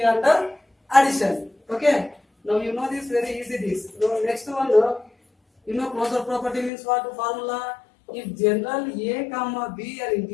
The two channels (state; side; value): drops out; right; at 6.7 s